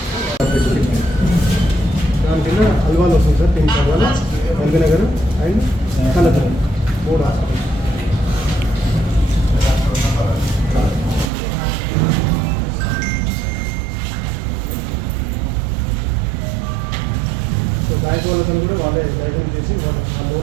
దాని కింద అల్వాల్ వస్తుంది sir. TIMS Alwal, LB Nagar and collector 3 hospital. So bank వాళ్ళతో కూడా వాళ్ళే లైసెన్స్ చేసి వాళ్ళ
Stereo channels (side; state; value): left; drops out; at 11.3 s